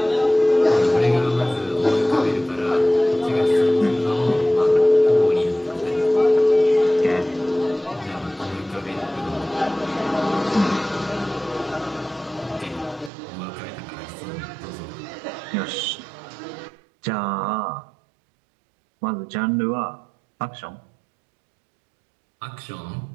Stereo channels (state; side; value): drops out; left; at 13.1 s